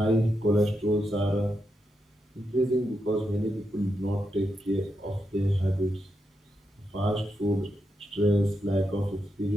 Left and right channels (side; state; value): both; normal; correlation 0.84